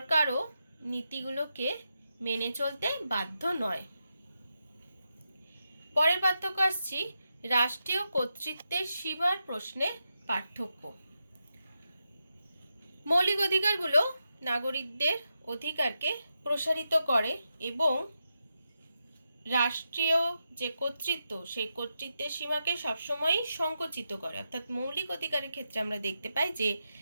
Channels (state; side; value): inverted; both; correlation -0.87